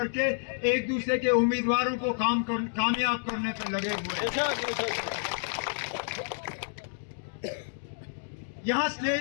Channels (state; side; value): silent; right; digital silence